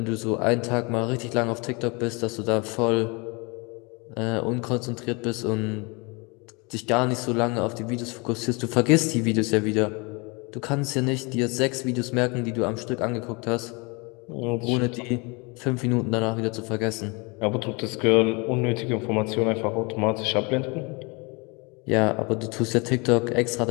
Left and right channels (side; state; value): right; quieter; 28.8 dB